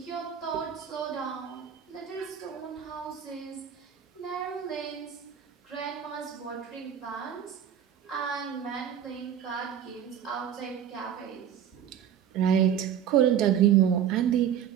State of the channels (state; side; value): quieter; left; 9.2 dB